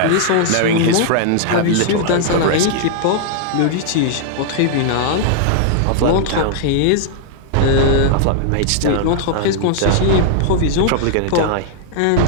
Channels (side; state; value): both; different; correlation -0.01